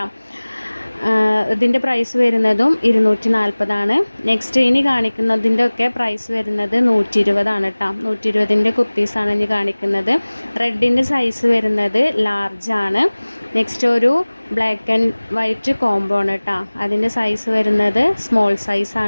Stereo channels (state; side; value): inverted; both; correlation -1.00